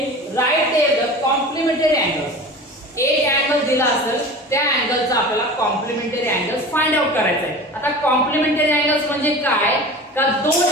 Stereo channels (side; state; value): both; normal; correlation 0.36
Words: write there the complementary angles. एक अँगल दिला असेल त्या अँगलचा आपल्याला कॉम्प्लिमेंटरी अँगल्स फाइंड आउट करायचा आहे। आता कॉम्प्लिमेंटरी अँगल्स म्हणजे काय, का दोन